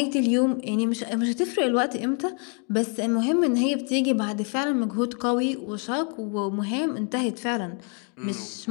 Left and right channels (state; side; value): quieter; right; 38.1 dB